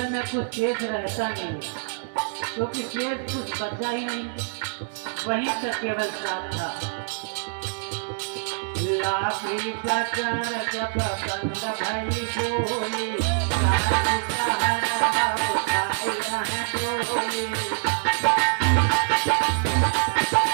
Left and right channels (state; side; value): silent; left; 62 dB below the other